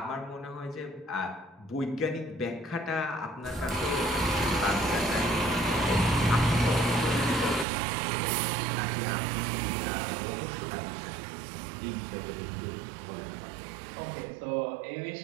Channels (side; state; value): left; drops out; at 7.7 s